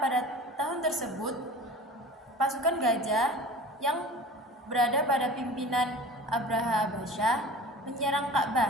tahun tersebut pasukan gajah yang berada pada pimpinan Abraha Abasyah menyerang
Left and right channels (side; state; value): both; normal; correlation 0.39